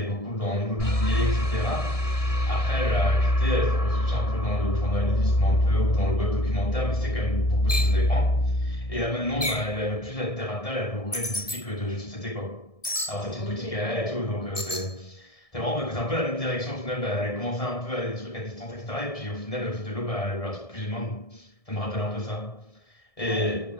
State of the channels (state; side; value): late; right; 1.7 ms